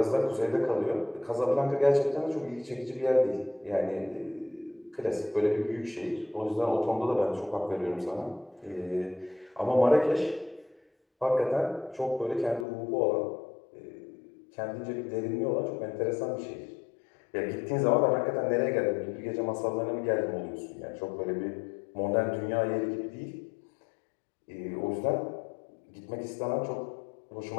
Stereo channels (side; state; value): right; drops out; at 12.7 s